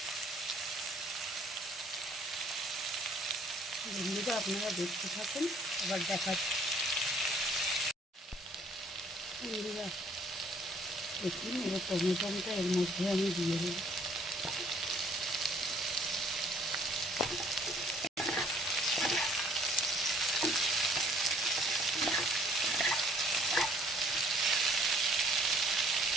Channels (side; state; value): both; normal; correlation 0.59